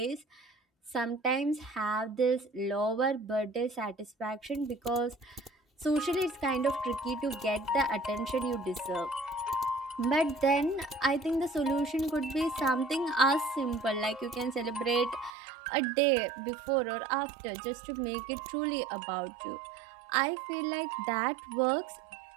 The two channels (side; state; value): left; drops out; at 15.3 s